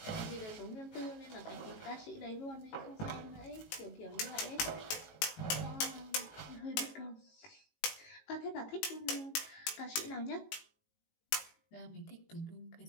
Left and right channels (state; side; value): late; right; 18 ms